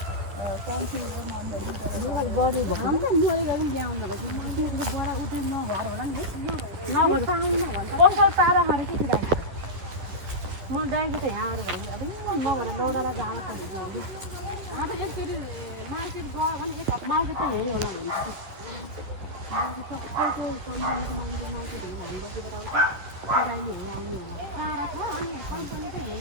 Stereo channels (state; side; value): late; left; 10 ms